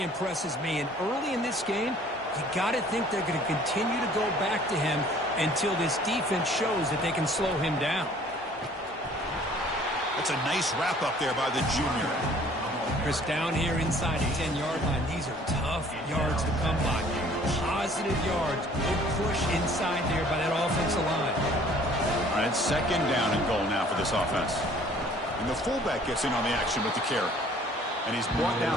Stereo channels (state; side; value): normal; both; correlation 0.55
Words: impresses me. And early in this game, you got to think they're going to continue to go back to him until this defense shows that they can slow him down. That's a nice wrap up there by the junior. Chris, down here inside the 10-yard line, these are tough yards to come by. Positive yards. Good push inside there by that offensive line. All right, second down and goal now for this offense. And the fullback gets in on the action with the carry. And he's brought